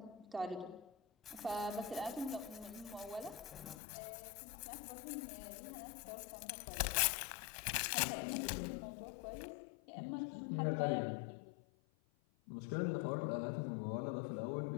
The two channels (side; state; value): right; drops out; at 3.8 s